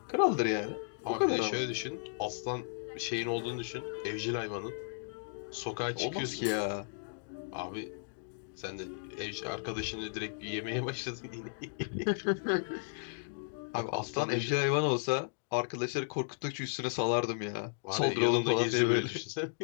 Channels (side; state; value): right; silent; digital silence